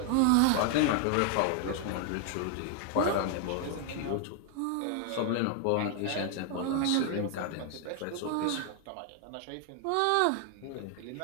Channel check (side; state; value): both; different; correlation 0.00